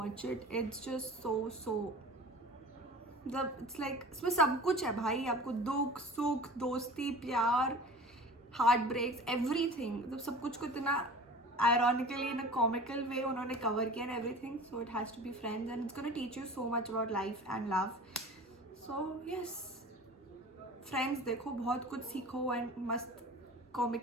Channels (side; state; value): both; normal; correlation 0.39